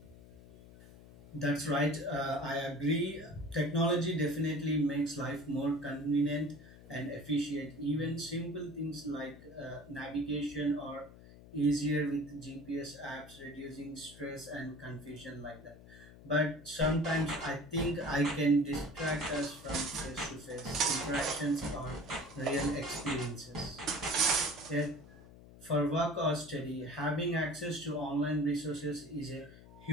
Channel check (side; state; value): left; noise; hum, 19 dB below the sound